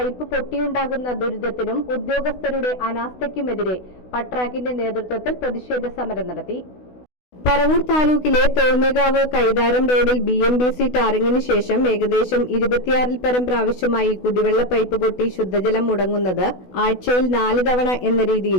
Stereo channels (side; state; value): right; late; 16 ms